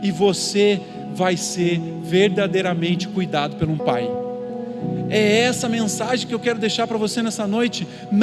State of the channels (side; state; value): both; identical; correlation 1.00